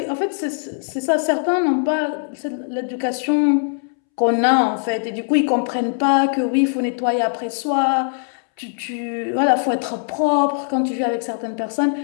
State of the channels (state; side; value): silent; right; 65 dB below the other